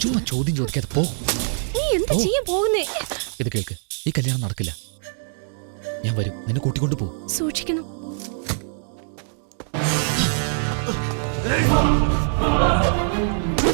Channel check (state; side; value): silent; left; digital silence